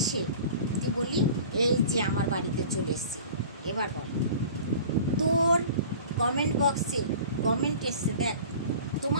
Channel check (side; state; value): both; inverted; correlation -0.42